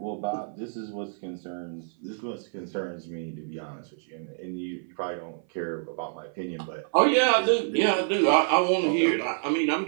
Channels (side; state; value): left; silent; 57 dB below the other